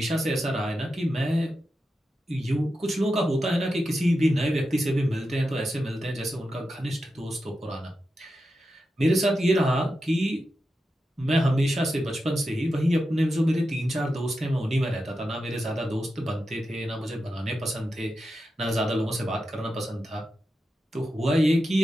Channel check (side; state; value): both; normal; correlation 0.90